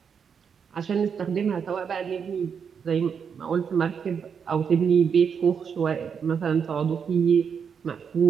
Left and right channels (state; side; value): quieter; left; 6.8 dB